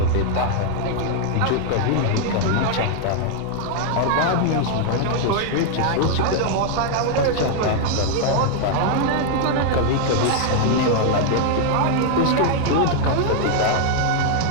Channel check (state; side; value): different; both; correlation 0.00